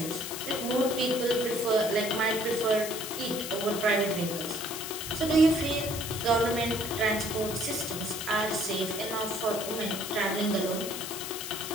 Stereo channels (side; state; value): left; noise; hiss, 7 dB below the sound